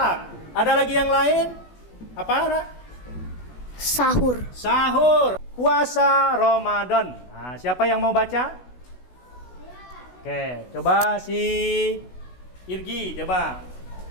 Ada lagi yang lain? Apa? Sahur. Sahur. puasa Ramadan. Nah, siapa yang mau baca? Oke, coba si Irgi, coba.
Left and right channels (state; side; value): late; right; 16 ms